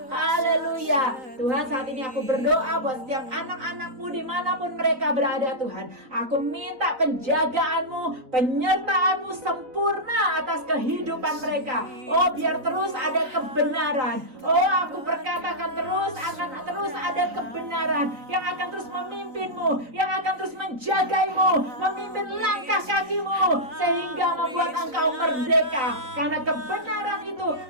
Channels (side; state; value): left; late; 3.9 ms